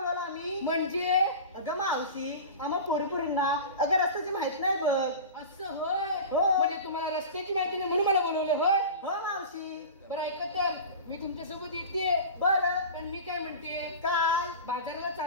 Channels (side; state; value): both; inverted; correlation -0.32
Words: आम्ही म्हणजे अगं मावशी आम्हा पोरपुरींना अगं रस्त्याची माहित नाही बघ असं होय हो. म्हणजे तुम्हाला रस्त्याची माहिती नाही म्हणून मला बोलवलं होय हो मावशी बरं ऐका तर मी तुमच्यासोबत येते बरं पण मी काय म्हणते काय बाजाराला